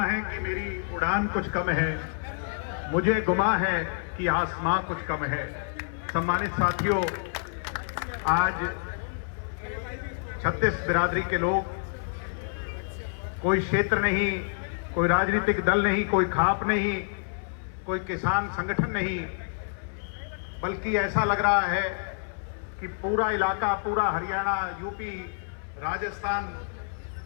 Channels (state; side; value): silent; right; 59 dB below the other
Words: है कि मेरी उड़ान कुछ कम है, मुझे गुमा है कि आसमां कुछ कम है। सम्मानित साथियों, आज 36 बिरादरी के लोग, कोई क्षेत्र नहीं, कोई राजनीतिक दल नहीं, कोई खाप नहीं, कोई किसान संगठन नहीं, बल्कि ऐसा लग रहा है कि पूरा इलाका, पूरा हरियाणा, यूपी, राजस्थान,